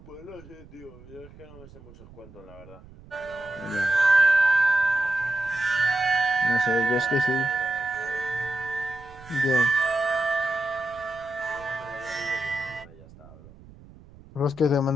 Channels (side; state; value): right; noise; rumble, 21 dB below the sound